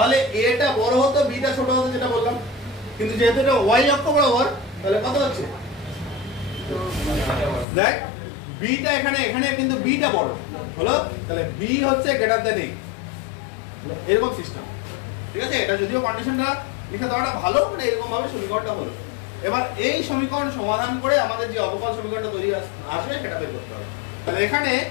a টা বড় হতো b টা ছোট হতো যেটা বললাম, কিন্তু যেহেতু এটা y অক্ষ বরাবর তাহলে কত হচ্ছে দেখ b টা এখানে কিন্তু b টা বড় হলো, তাহলে b হচ্ছে গ্রেটার দ্যান a এরকম সিস্টেম। ঠিক আছে, এটা যদিও কন্ডিশনটা লিখে দেওয়াটা ভালো মানে এরকম ভাবে সমীকরণটা হলো। এবার এই সমীকরণ সমাধান করে আমাদের যে অবকল সমীকরণটা তৈরি আসবে সেটা বের করতে হবে। তাহলে এখানে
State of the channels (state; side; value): drops out; right; at 7.7 s